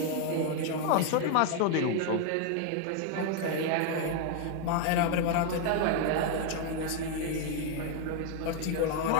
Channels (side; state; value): both; different; correlation 0.00